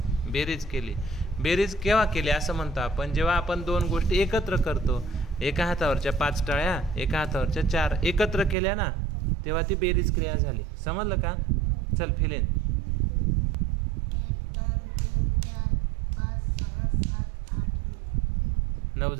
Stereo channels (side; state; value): left; drops out; at 8.6 s